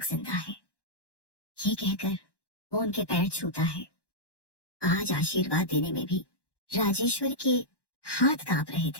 जिंदा है। ये कहकर वो उनके पैर छूता है। आज आशीर्वाद देने में भी राजेश्वर के हाथ कांप रहे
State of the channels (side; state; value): right; late; 1.1 ms